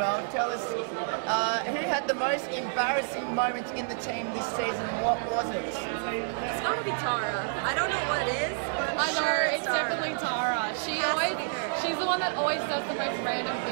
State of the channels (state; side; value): silent; left; digital silence